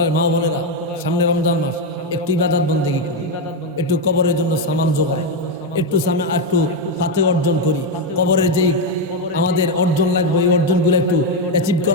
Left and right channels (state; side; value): normal; both; correlation 0.05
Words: মা বোনেরা, সামনে রমজান মাস, একটু ইবাদত বন্দেগী করি, একটু কবরের জন্য সামান জোগাই, একটু ফাতে অর্জন করি। কবরের যেই আমাদের অর্জন লাগবে এই অর্জনগুলো একটু অ্যাচিভ